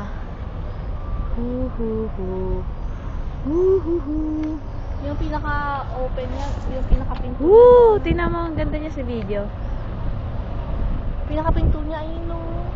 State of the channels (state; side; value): identical; both; correlation 1.00